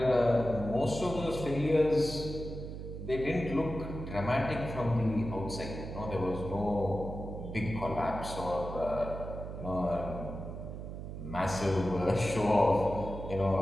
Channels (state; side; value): noise; right; hum, 8 dB below the sound